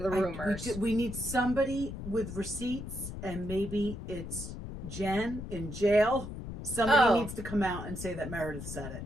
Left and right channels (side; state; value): left; noise; rumble, 8 dB below the sound